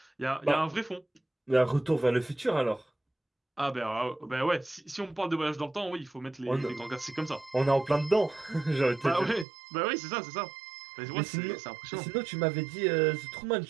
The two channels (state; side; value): drops out; left; at 9.5 s